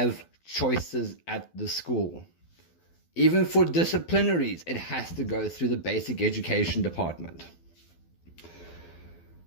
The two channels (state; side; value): late; right; 12 ms